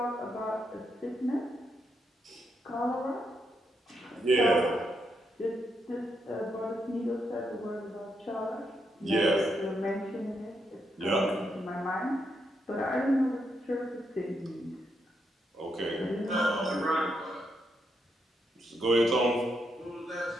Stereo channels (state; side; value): normal; both; correlation 0.80